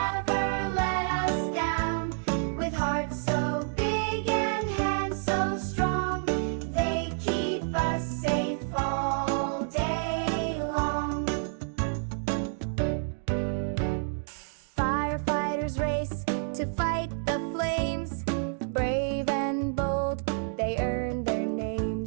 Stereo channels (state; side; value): silent; left; digital silence